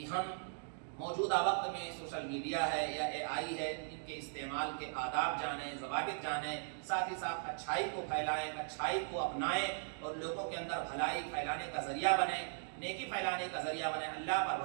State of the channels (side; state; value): left; silent; digital silence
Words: ہم موجودہ وقت میں سوشل میڈیا ہے یا AI ہے، ان کے استعمال کے آداب جانیں، ضوابط جانیں، ساتھ ہی ساتھ اچھائی کو پھیلائیں، اچھائی کو اپنائیں اور لوگوں کے اندر بھلائی پھیلانے کا ذریعہ بنیں، نیکی پھیلانے کا ذریعہ بنیں، اللہ پر